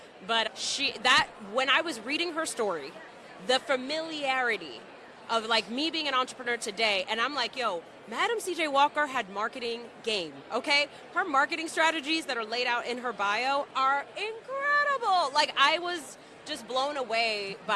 But when I was reading her story, the familiarity of like me being an entrepreneur today, and I'm like, yo, Madam C.J. Walker had marketing game, okay? Her marketing strategies that are laid out in her bio are incredible. Like, I was just blown away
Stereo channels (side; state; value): both; identical; correlation 1.00